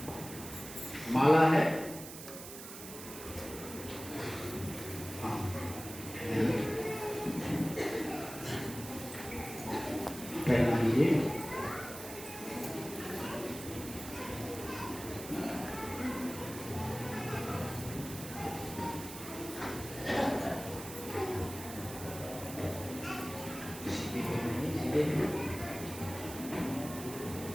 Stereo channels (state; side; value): noise; right; hiss, 11 dB below the sound